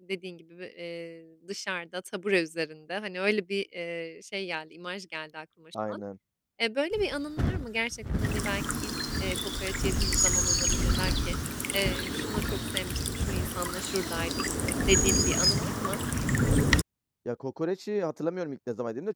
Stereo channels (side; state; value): both; identical; correlation 1.00